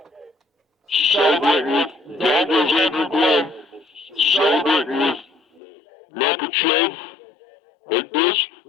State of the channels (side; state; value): right; drops out; at 5.6 s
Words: Celebrating with, down goes Andrew Glenn. Celebrating with Makhachev. Like this,